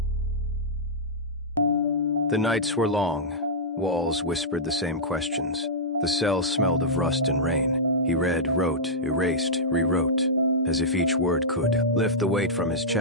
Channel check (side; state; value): both; normal; correlation -0.11